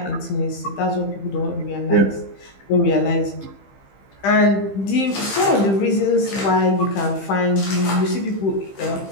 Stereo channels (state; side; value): late; right; 15 ms